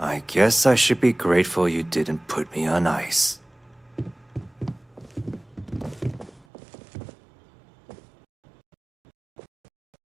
guess I should be grateful you didn't put me on ice.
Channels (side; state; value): left; drops out; at 6.5 s